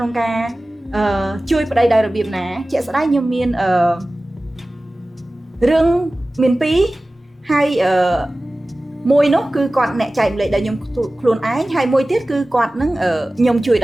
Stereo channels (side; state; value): both; normal; correlation 0.97